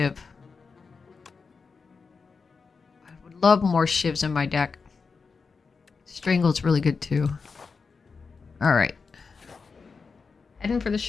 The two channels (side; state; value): right; quieter; 4.9 dB